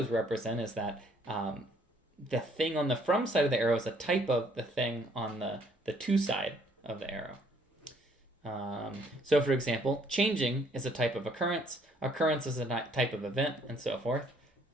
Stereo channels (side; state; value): both; normal; correlation 0.64